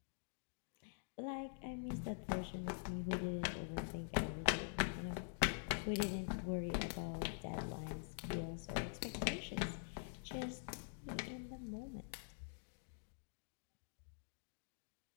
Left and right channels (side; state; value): right; silent; digital silence